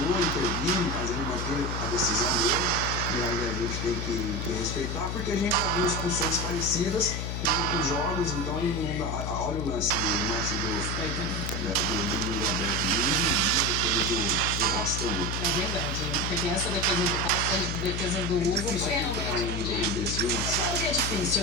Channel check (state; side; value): noise; left; hum, 3 dB below the sound